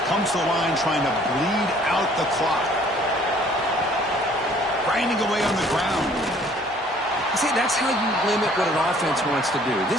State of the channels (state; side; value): normal; both; correlation 0.57